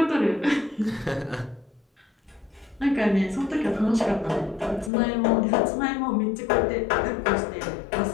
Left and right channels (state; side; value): drops out; right; at 4.9 s